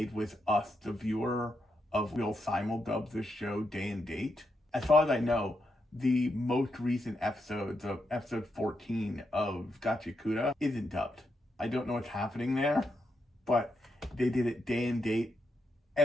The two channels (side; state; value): both; normal; correlation 0.82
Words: with us, the viewer, of we'll simuldub this show day and date. As far as I know, the most recent episodes of episode 14 of Gachikuta isn't dubbed. I don't know what's happening there, but they did it day and date